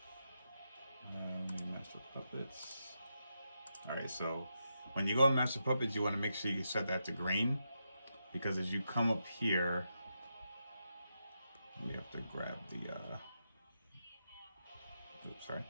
Master Puppets. Alright, so when you go in Master Puppets, you want to make sure you set that to green, because as you come up here, we have to grab the, oops, sorry.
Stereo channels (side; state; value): both; inverted; correlation -0.85